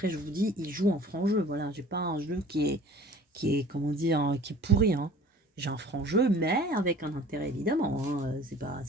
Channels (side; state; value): both; normal; correlation 0.47